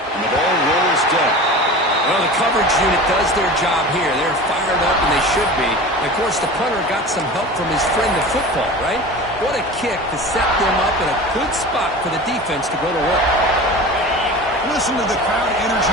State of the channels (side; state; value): both; normal; correlation 0.35